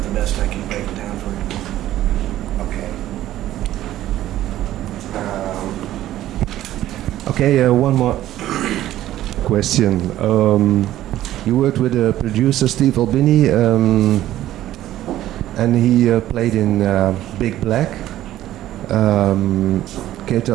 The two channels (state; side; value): quieter; left; 13.7 dB